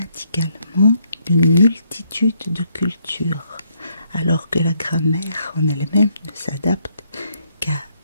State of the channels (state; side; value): inverted; both; correlation -0.72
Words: d'une multitude de cultures, alors que la grammaire en elle-même ne s'adapte qu'à